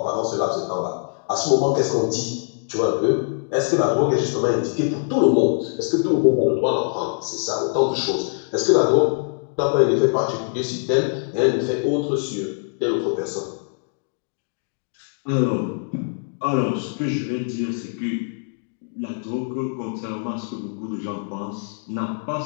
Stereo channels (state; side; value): silent; right; digital silence